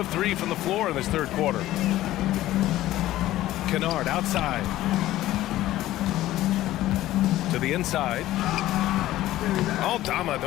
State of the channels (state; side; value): quieter; right; 15.0 dB